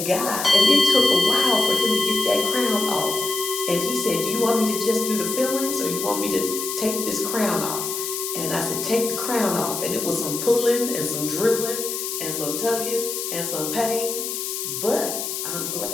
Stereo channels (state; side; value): noise; left; hiss, 4 dB below the sound